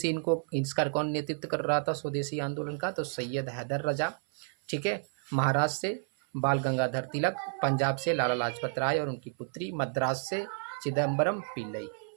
इसका कौन नेतृत्व कर रहा था स्वदेशी आंदोलन का? तो सैयद हैदर रजा। ठीक है, महाराष्ट्र से बाल गंगाधर तिलक, पंजाब से लाला लाजपत राय और उनकी पुत्री, मद्रास से चिदम्बरम पिल्लई।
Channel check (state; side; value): silent; left; 57 dB below the other